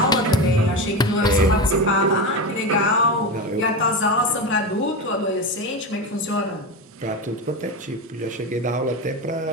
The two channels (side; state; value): both; normal; correlation 0.20